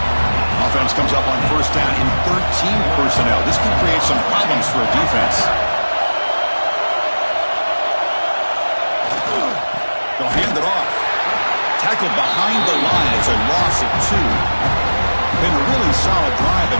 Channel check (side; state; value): both; inverted; correlation -1.00